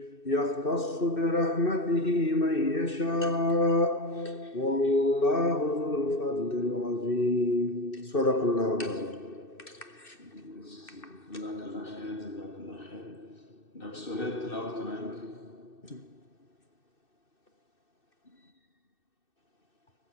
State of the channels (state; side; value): late; right; 2.6 ms